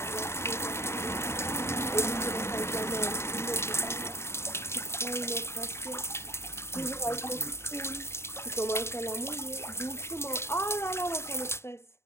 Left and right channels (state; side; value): late; right; 0.13 ms